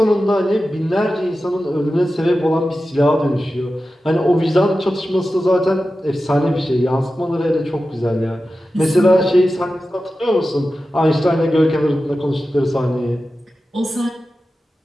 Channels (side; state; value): both; normal; correlation 0.93